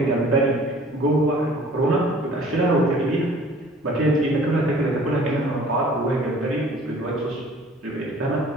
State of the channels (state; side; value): normal; both; correlation 0.51